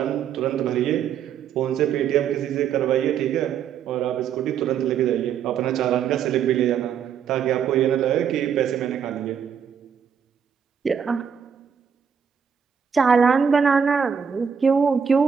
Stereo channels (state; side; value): quieter; left; 7.5 dB